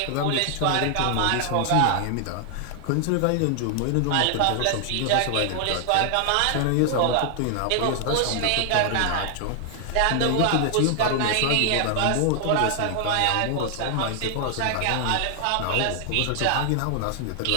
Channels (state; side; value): different; both; correlation 0.00